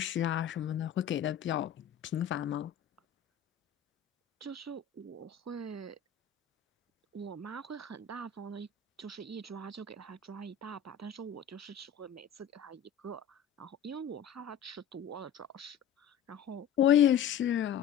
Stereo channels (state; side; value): quieter; right; 8.4 dB